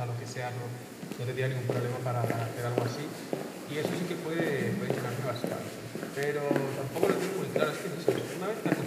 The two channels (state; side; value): identical; both; correlation 1.00